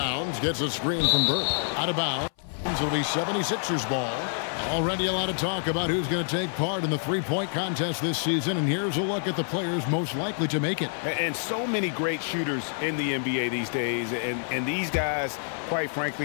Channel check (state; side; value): silent; right; 58 dB below the other